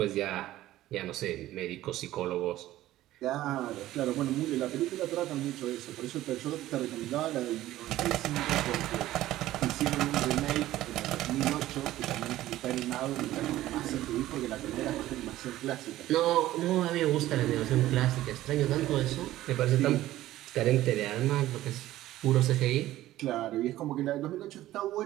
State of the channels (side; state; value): left; quieter; 14.9 dB